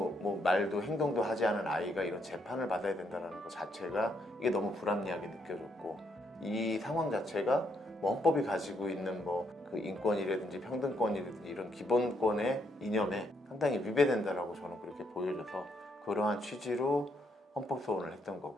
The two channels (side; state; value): both; normal; correlation 0.75